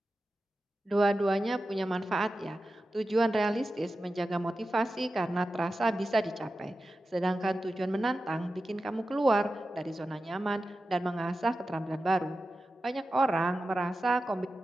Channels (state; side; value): normal; both; correlation 0.93